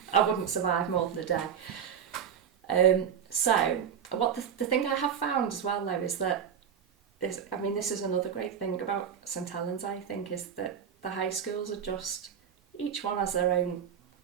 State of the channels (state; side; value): quieter; left; 8.2 dB